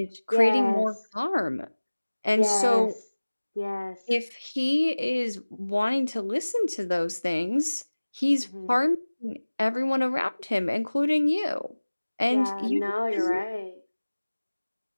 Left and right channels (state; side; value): inverted; both; correlation -1.00